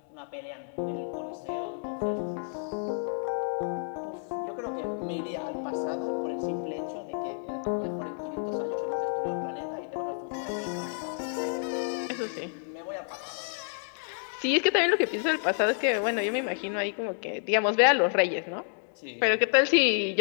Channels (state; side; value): silent; right; 58 dB below the other